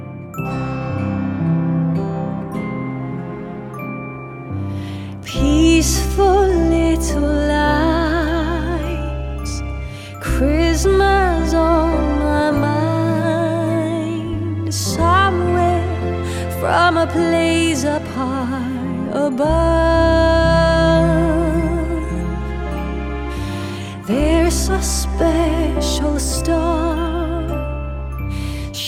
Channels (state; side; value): identical; both; correlation 1.00